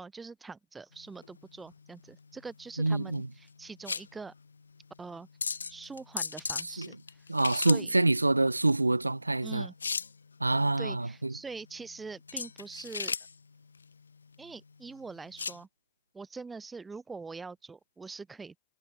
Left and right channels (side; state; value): both; inverted; correlation -0.88